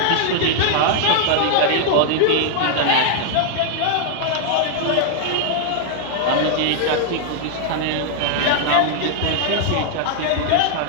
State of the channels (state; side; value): different; both; correlation 0.00